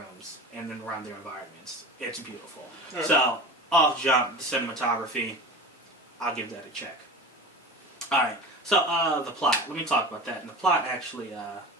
and then around their environments. It's beautiful. Right. So, off jump, the cinematography, I'll give that a check. Alright, so the plot. Let me talk about that. And the plot, actually, I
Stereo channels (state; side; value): normal; both; correlation 0.33